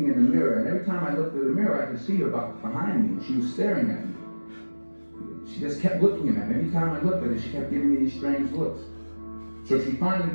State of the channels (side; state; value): both; inverted; correlation -1.00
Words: in the mirror. And every time I looked at the mirror, I could see her behind me. And she was staring at me. She just kept looking at me. Every time I looked at her, she kept giving me these strange looks. So she